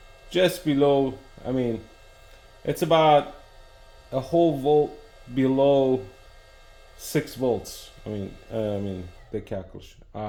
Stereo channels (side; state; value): both; identical; correlation 1.00